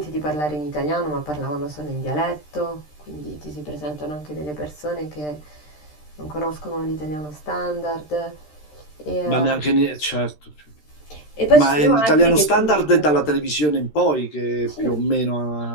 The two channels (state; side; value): late; right; 13 ms